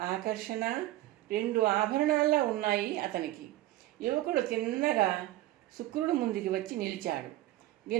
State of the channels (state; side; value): quieter; left; 15.8 dB